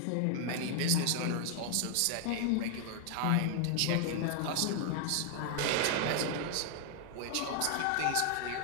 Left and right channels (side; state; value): both; different; correlation 0.00